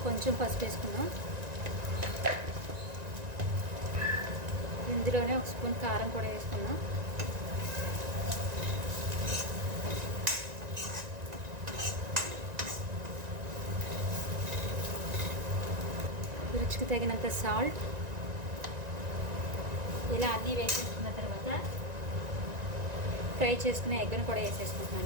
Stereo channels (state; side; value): late; left; 1.9 ms